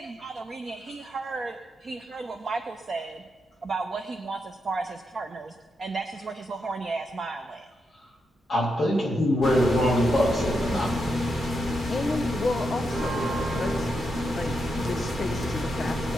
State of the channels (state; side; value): normal; both; correlation 0.84